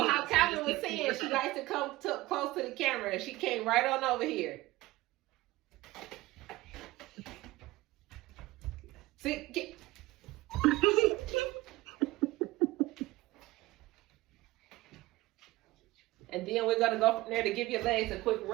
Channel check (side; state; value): left; quieter; 19.2 dB